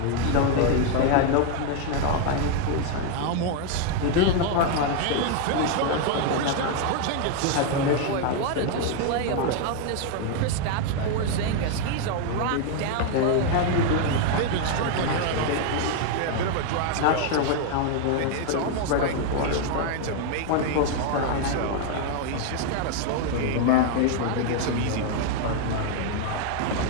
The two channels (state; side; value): different; both; correlation 0.01